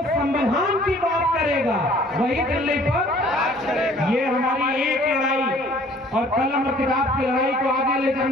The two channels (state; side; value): normal; both; correlation 0.54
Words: संविधान की बात करेगा वही दिल्ली पर। ये हमारी एक लड़ाई और कलम और किताब की लड़ाई को आगे ले